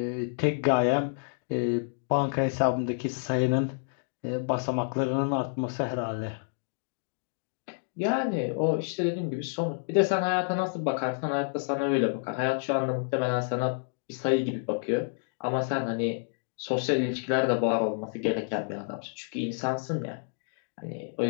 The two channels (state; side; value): silent; right; digital silence